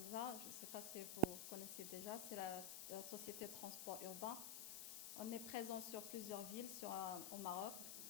Je ne sais pas si vous connaissez déjà, c'est la société de transport urbain. On est présent sur plusieurs villes au Maroc,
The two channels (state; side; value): noise; left; hiss, 4 dB below the sound